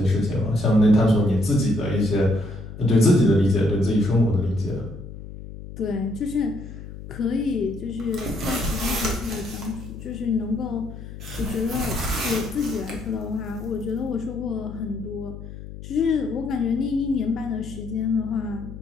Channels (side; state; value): left; noise; hum, 12 dB below the sound